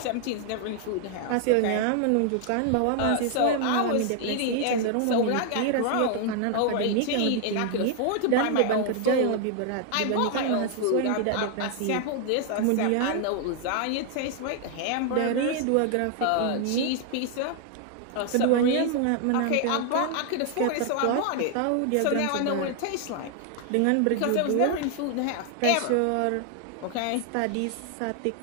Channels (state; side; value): different; both; correlation 0.00